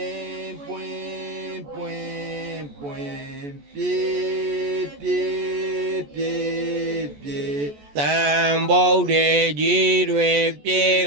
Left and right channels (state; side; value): late; left; 14 ms